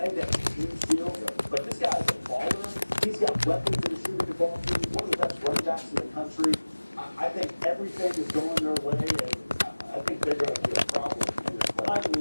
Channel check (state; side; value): inverted; both; correlation -1.00